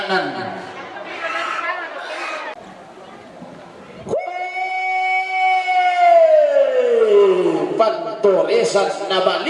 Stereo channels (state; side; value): identical; both; correlation 1.00